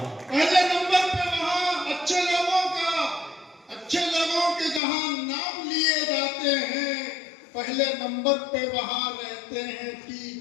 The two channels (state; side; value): drops out; right; at 4.8 s